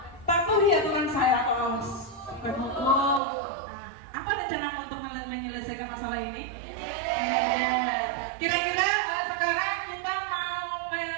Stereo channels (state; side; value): drops out; left; at 3.2 s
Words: Patuhi aturan saya atau berhukum. Apa rencanamu untuk menyelesaikan masalah ini? Kira-kira sekarang kita mau